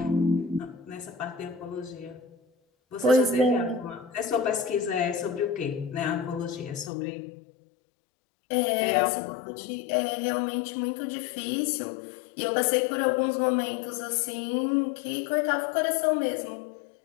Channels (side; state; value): right; drops out; at 6.9 s